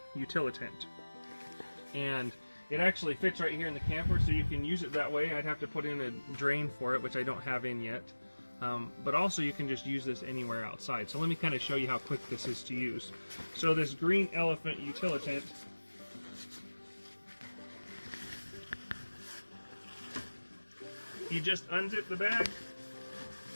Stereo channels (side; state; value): both; inverted; correlation -1.00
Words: utilitant. And it actually fits right here in the camper, so you can use it that way. I'd have to put in a drain for it, which I don't have in yet. But also you can just use this anywhere outside. So let me kind of show you how quick this is to use. So this green elephant utilitant, you just unzip the bag.